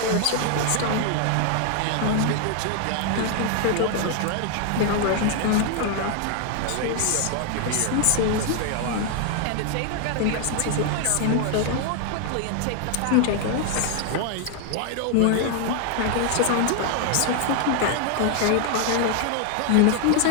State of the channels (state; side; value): different; both; correlation 0.00